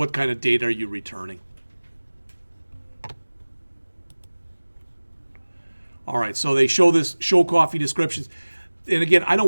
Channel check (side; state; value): both; inverted; correlation -1.00